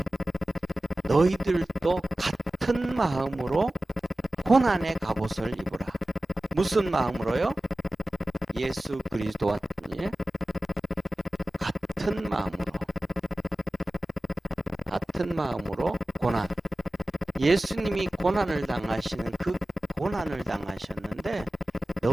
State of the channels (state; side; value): normal; both; correlation 0.96